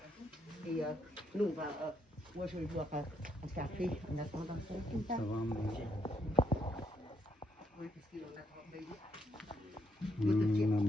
Et nous, moi je vais boire un café en attendant ça. Ça va, maman? Oui, parce qu'il en a trop.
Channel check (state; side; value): normal; both; correlation 0.74